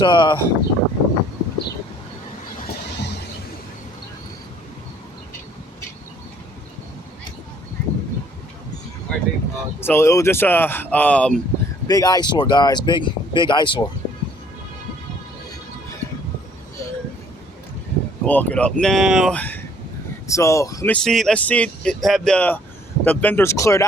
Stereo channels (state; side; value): normal; both; correlation 0.60